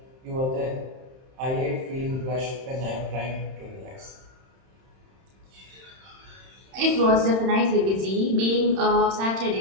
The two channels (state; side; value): late; left; 31 ms